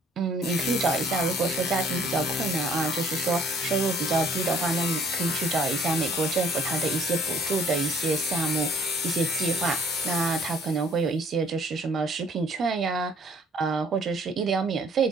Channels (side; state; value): both; normal; correlation 0.59